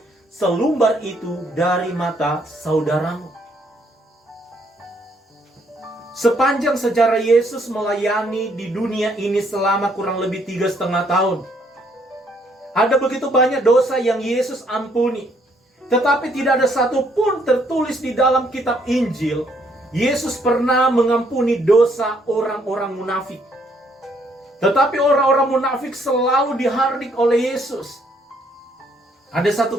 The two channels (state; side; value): normal; both; correlation 0.68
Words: selumbar itu dari mata saudaramu. Sepanjang sejarah Yesus melayani di dunia ini selama kurang lebih 3,5 tahun, Ada begitu banyak dosa yang Yesus ampuni. Tetapi tidak ada satu pun tertulis di dalam kitab Injil, Yesus pernah mengampuni dosa orang-orang munafik. Tetapi orang-orang munafik selalu dihardik oleh Yesus. Ada